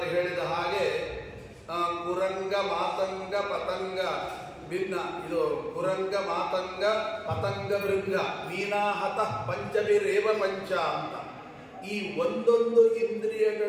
ಹೇಳಿದ ಹಾಗೆ, ಕುರಂಗ ಮಾತಂಗ ಪತಂಗ ಭಿನ್ನ, ಇದು ಕುರಂಗ ಮಾತಂಗ ಪತಂಗ ಭೃಂಗ ಮೀನಾಹತ ಪಂಚಭಿರೇವ ಪಂಚ ಅಂತ. ಈ ಒಂದೊಂದು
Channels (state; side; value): identical; both; correlation 1.00